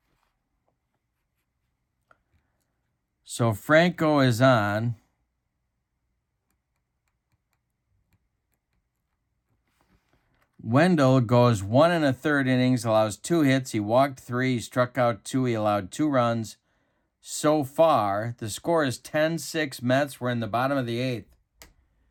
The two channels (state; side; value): identical; both; correlation 1.00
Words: So Franco is on. Wendell goes 1 1/3 innings, allows 2 hits. He walked 3, he struck out 2, he allowed 2 runs. So far, the score is 10-6 Mets. We're in the bottom of the 8th.